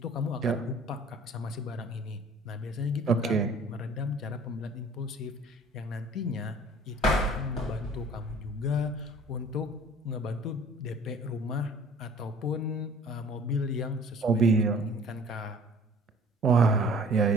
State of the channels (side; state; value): both; normal; correlation 0.50